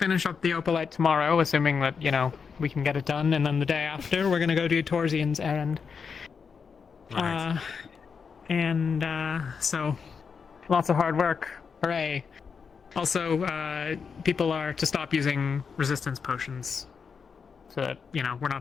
up the Opalite tomorrow, assuming that, you know, we can get it done, and then the day after we're gonna go do Torsian's errand. Right. So lots of hard work. Hooray. Also, people are to stop using resistance potions so that, you know, we're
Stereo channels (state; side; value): quieter; right; 5.9 dB